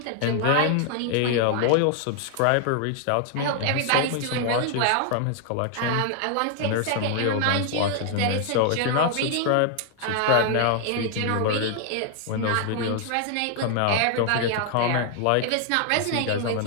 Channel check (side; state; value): both; different; correlation 0.00